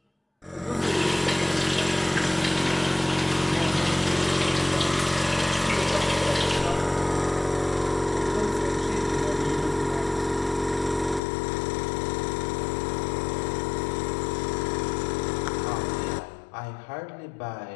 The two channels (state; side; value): drops out; right; at 11.2 s